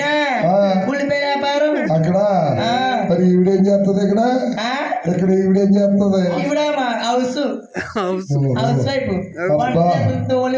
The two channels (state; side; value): identical; both; correlation 1.00